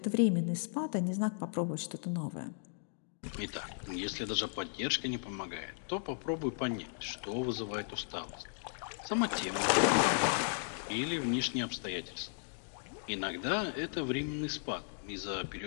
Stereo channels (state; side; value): silent; right; digital silence